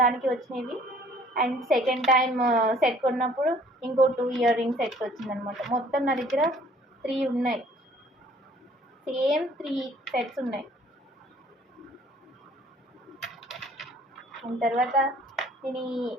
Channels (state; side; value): normal; both; correlation 0.56